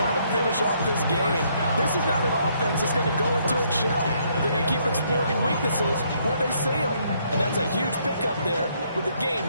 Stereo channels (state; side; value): inverted; both; correlation -0.70